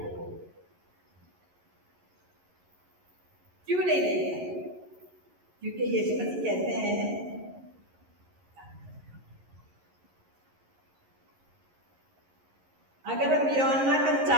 क्यों नहीं देखा? क्योंकि यीशु मसीह कहते हैं, अगर हम यूहन्ना का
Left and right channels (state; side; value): late; left; 11 ms